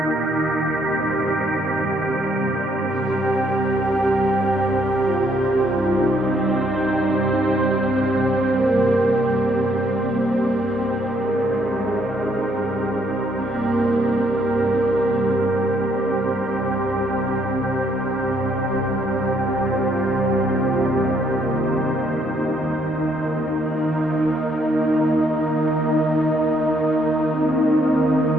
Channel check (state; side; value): normal; both; correlation 0.70